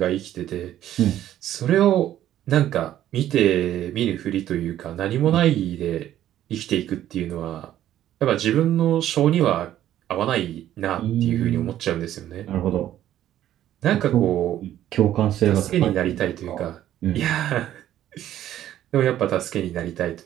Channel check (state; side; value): quieter; left; 12.2 dB